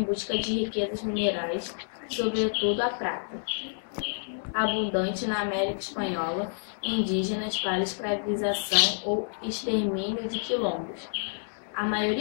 busca de riquezas minerais, sobretudo a prata, abundante na América Espanhola, indígenas para escravização ou extermínio de quilombos. A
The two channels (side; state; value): right; silent; 59 dB below the other